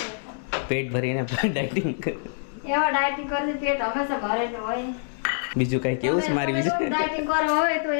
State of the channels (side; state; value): right; silent; digital silence